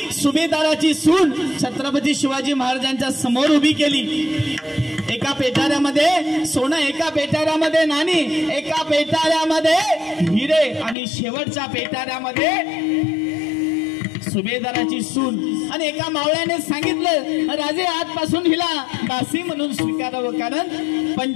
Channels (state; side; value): drops out; right; at 11.0 s